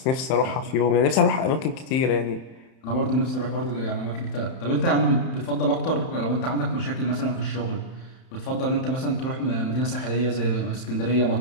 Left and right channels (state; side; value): late; right; 31 ms